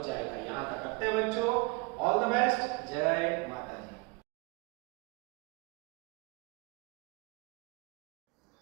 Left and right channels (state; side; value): quieter; left; 27.2 dB